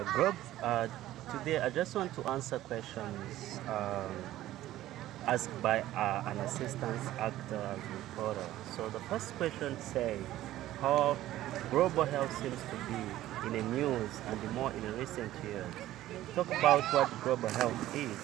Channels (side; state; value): left; quieter; 14.5 dB